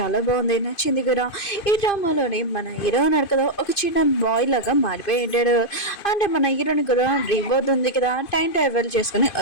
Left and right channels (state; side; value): late; right; 2.5 ms